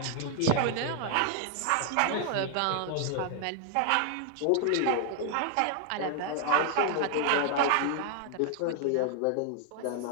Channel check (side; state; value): both; different; correlation 0.00